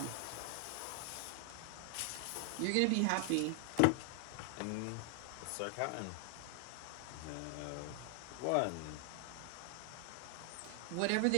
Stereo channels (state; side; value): different; both; correlation 0.00